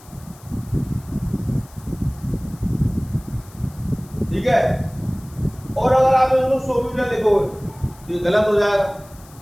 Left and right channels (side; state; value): left; noise; hiss, 24 dB below the sound